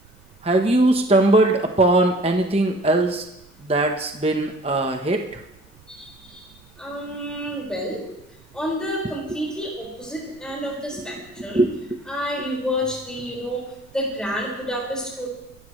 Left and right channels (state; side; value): noise; right; rumble, 27 dB below the sound